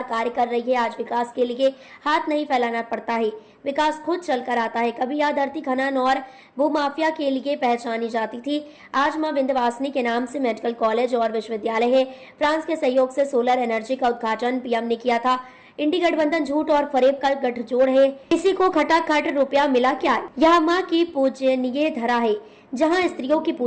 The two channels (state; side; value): identical; both; correlation 1.00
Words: कार्य कर रही है। आज विकास के लिए हाथ नहीं फैलाना पड़ता है, विकास खुद चलकर आता है। कभी यह धरती खनन और भूमाफिया के लिए पहचानी जाती थी। आज मां विंध्यवासिनी के नाम से मेडिकल कॉलेज और विश्वविद्यालय है। फ्रांस के सहयोग से सोलर एनर्जी का उद्घाटन पीएम ने किया था। इंडी गठबंधन झूठ और फरेब का गठजोड़ है। किसी को खटाखट रुपया मिला क्या? यह माँ की पूजनीय धरा है। जहाँ स्त्रियों की